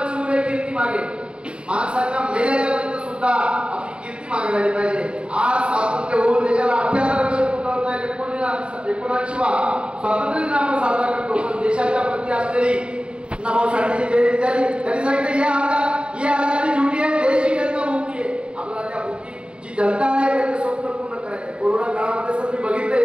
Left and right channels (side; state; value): left; late; 0.055 ms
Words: कीर्ती मागे. माणसाच्या मेल्याच्या नंतर सुद्धा आपली कीर्ती मागे राहिली पाहिजे. आज स्वातंत्र्य होऊन देशाला 78 वर्ष पूर्ण होत आहेत. 79वा स्वातंत्र्य दिन आपण साजरा करतो. पण देशाच्या प्रती असलेली नाभाऊ साठेची जयंती झाली. त्यांनी सांगितलं ये आजादी झुटी आहे, देश ही जनता भुकी आहे. आपल्याला त्या भुकी जी जनता आहे त्यांचं स्वप्न पूर्ण करायचं आहे. कोरोना काळामध्ये सर मी बघितलं